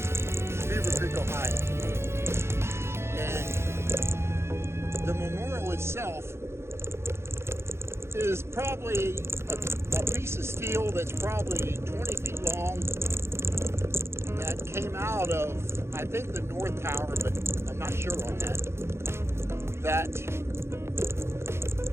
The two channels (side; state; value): left; late; 0.12 ms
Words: Beaver Creek, Ohio. And the memorial itself is probably a piece of steel that's probably 20 feet long that came out of, I think, the North Tower, but I'm not sure on that. That